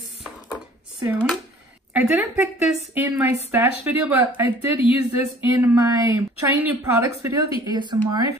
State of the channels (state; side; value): normal; both; correlation 0.51